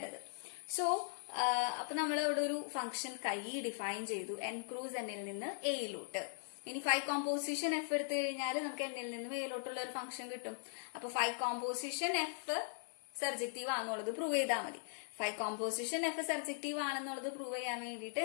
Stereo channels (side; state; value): right; silent; 51 dB below the other